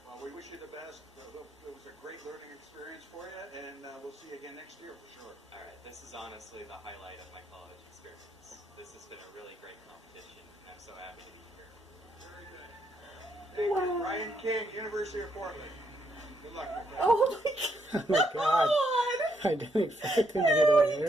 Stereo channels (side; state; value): both; normal; correlation 0.76